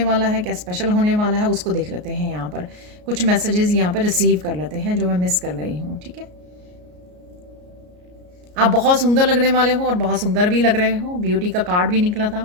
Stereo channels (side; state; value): left; late; 33 ms